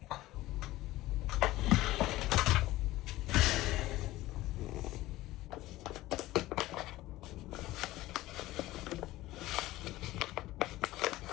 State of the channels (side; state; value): right; quieter; 17.1 dB